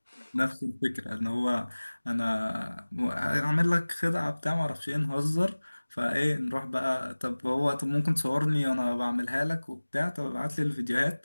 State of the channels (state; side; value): inverted; both; correlation -1.00